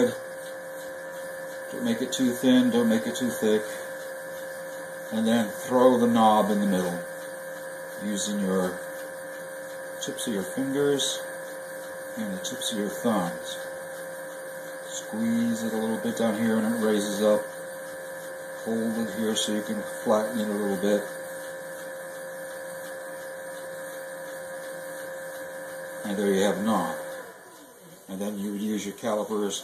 Don't make it too thin, don't make it too thick. And then throw the knob in the middle using your tips of your fingers and the tips of your thumbs. Squeeze it a little bit down here and it raises up. Hold it here so you can flatten it a little bit. And there you have a knob. And then you would use your calipers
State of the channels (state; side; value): identical; both; correlation 1.00